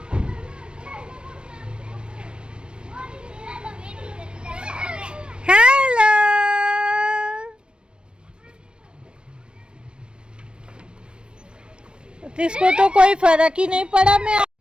इसको तो कोई फर्क ही नहीं पड़ा। मैं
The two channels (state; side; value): late; left; 0.055 ms